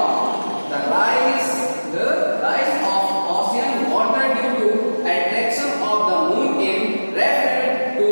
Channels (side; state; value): both; inverted; correlation -1.00